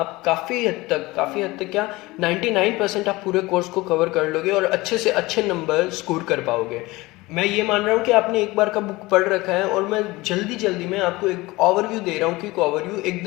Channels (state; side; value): quieter; right; 20.9 dB